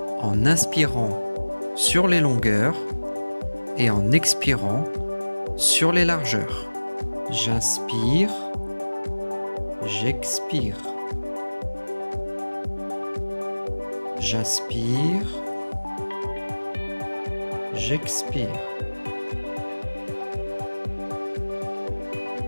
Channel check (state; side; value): inverted; both; correlation -1.00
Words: en inspirant sur les longueurs et en expirant sur les largeurs. J'inspire, j'expire. J'inspire, j'expire.